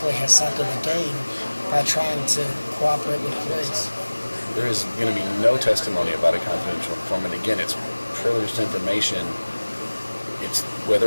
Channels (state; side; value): inverted; both; correlation -1.00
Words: has something to gain by trying to cooperate with police? There is going to be no testimony about a confidential informant. Again, it's privileged information. It's